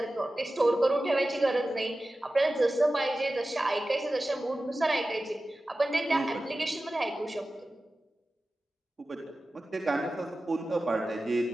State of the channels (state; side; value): normal; both; correlation 0.95